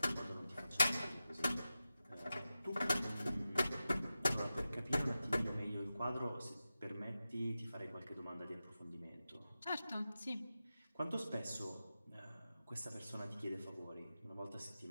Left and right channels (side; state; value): both; inverted; correlation -0.93